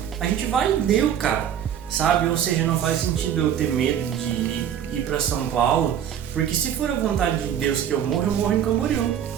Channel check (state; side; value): quieter; left; 9.5 dB